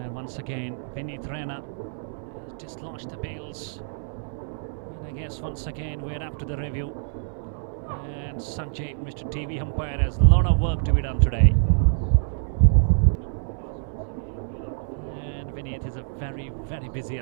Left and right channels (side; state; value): left; silent; digital silence